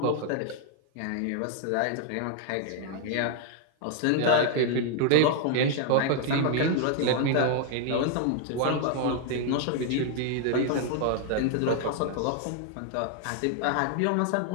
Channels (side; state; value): both; different; correlation 0.00